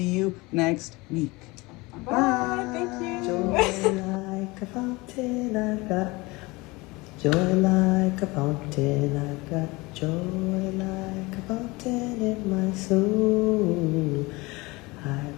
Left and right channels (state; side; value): quieter; right; 23.5 dB